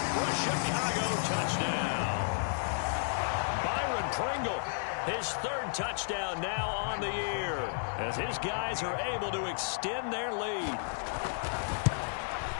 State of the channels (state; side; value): silent; right; digital silence